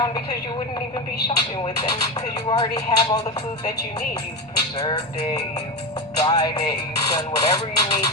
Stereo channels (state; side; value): normal; both; correlation 0.16